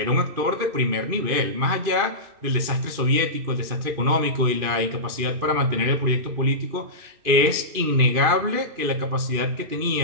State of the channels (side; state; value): left; late; 2.5 ms